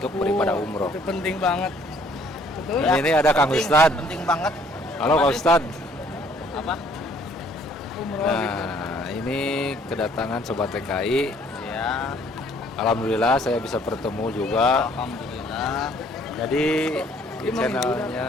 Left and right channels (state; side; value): normal; both; correlation 0.60